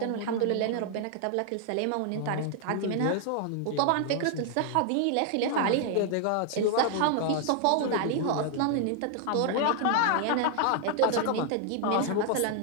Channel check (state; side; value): different; both; correlation 0.00